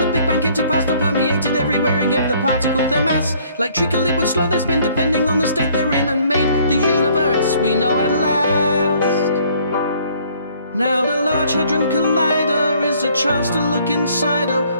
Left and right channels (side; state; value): both; inverted; correlation -0.60